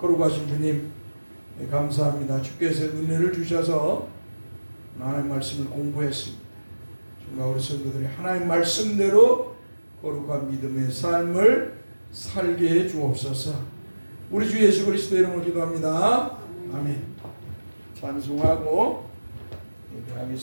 주님 감사합니다. 주께서 은혜를 주셔서 하나님 말씀을 공부했습니다. 정말 우리 성도들이 하나님 말씀대로 거룩한 믿음의 삶을 살게 해 주옵소서. 우리 주 예수 그리스도 이름으로 기도합니다. 아멘. 찬송하고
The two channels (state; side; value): inverted; both; correlation -1.00